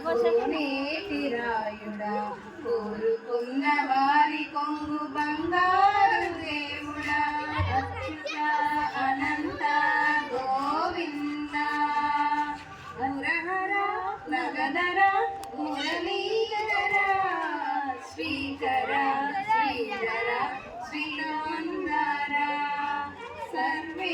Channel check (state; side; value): identical; both; correlation 1.00